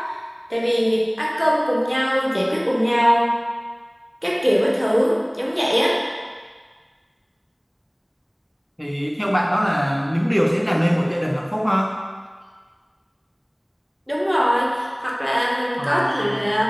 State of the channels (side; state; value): both; identical; correlation 1.00